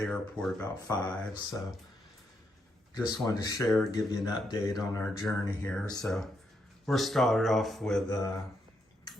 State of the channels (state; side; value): normal; both; correlation 0.79